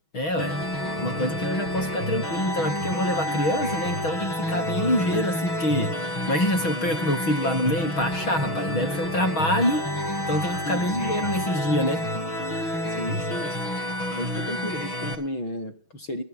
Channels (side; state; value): right; late; 6.2 ms